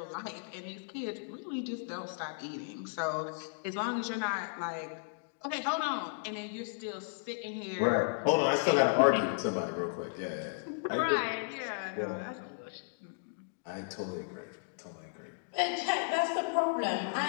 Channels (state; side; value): silent; right; digital silence